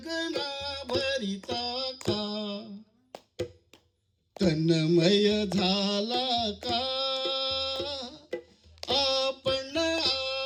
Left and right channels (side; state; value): both; identical; correlation 1.00